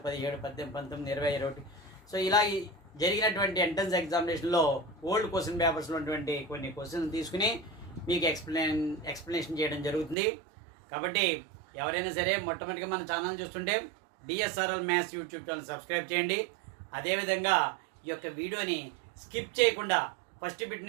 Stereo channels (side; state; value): left; drops out; at 10.2 s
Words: 17, 18, 19, 20, 21 సో ఇలా జరిగినటువంటి ఎంట్రన్స్ ఎగ్జామినేషన్లో ఓల్డ్ క్వశ్చన్ పేపర్స్లో ఉన్నటువంటి కొన్ని క్వశ్చన్స్ తీసుకుని మీకు ఎక్స్ప్లెనేషన్ చేయడం జరుగుతుంది. కాబట్టి ఎవరైనా సరే మొట్టమొదటిగా మన ఛానల్ చూస్తుంటే DSRL maths YouTube channel subscribe చేయండి. అదేవిధంగా ఈ యొక్క వీడియోని స్కిప్ చేయకుండా ఫస్ట్ బిట్